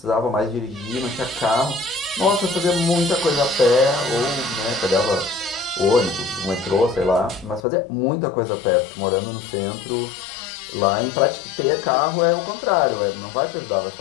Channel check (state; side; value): drops out; right; at 7.6 s